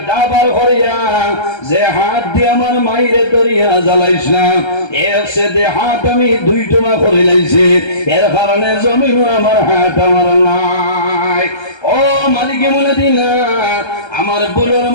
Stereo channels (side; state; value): right; late; 1.3 ms